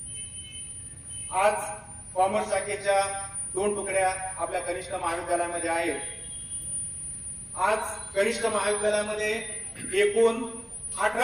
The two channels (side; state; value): both; identical; correlation 1.00